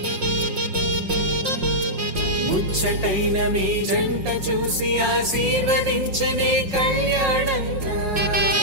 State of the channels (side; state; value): left; late; 5.5 ms